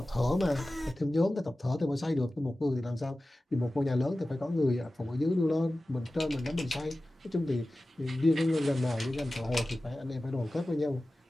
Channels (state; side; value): normal; both; correlation 0.96